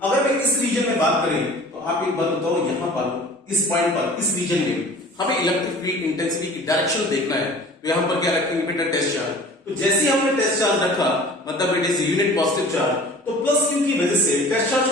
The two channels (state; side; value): normal; both; correlation 0.44